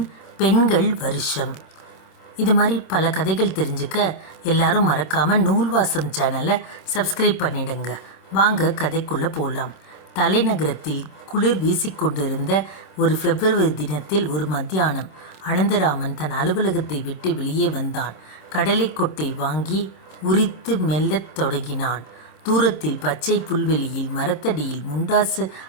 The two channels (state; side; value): late; right; 26 ms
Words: பெண்கள் வருஷம். இது மாதிரி பல கதைகள் தெரிஞ்சுக்க எல்லாரும் மறக்காமல் நூல்வாசம் சேனலை சப்ஸ்கிரைப் பண்ணிடுங்க. வாங்க கதைக்குள்ளே போகலாம். தலைநகரத்தில் குளிர் வீசிக்கொண்டிருந்த ஒரு பிப்ரவரி தினத்தில் ஒரு மத்தியானம் அனந்தராமன் தன் அலுவலகத்தை விட்டு வெளியே வந்தான். கடலைக்கொட்டை வாங்கி உரித்து மெல்லத் தொடங்கினான். தூரத்தில் பச்சை புல்வெளியில் மரத்தடியில் முண்டாசு